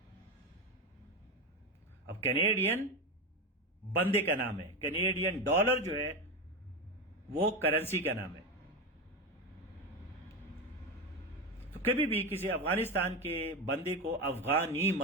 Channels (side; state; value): both; normal; correlation 0.17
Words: अब कैनेडियन बंदे का नाम है, कैनेडियन डॉलर जो है वो करेंसी का नाम है। तो कभी भी किसी अफगानिस्तान के बंदे को अफगानी